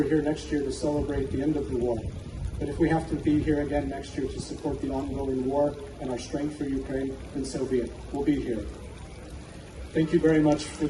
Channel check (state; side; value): identical; both; correlation 1.00